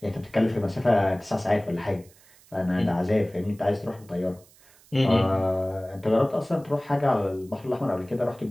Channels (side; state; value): right; noise; hiss, 27 dB below the sound